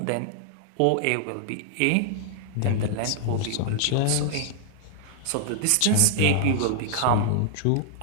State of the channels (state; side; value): different; both; correlation 0.00